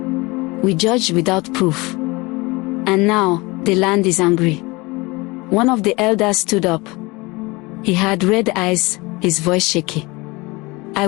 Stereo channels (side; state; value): right; quieter; 23.9 dB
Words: We judged without proof. And now, the land is angry." One of the elders stood up. He had red eyes, his voice shaky. "I